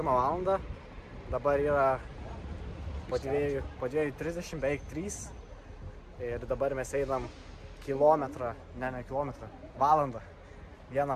valandą. Dabar yra po 2:30, beveik 3. Ir dabar mes einam valandą.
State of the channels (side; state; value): both; identical; correlation 1.00